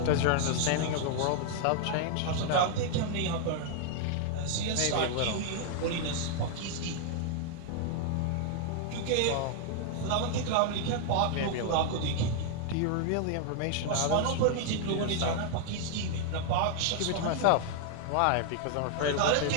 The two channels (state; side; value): different; both; correlation 0.00